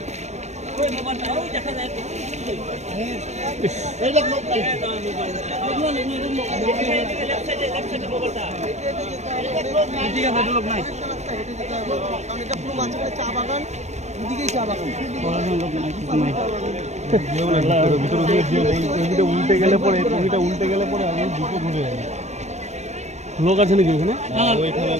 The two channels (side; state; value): left; late; 0.33 ms